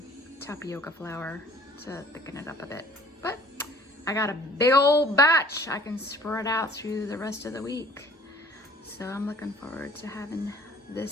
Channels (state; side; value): normal; both; correlation 0.53